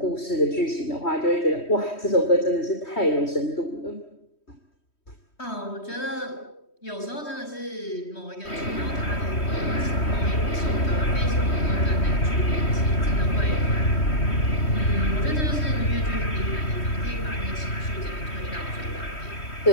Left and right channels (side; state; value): right; late; 3.1 ms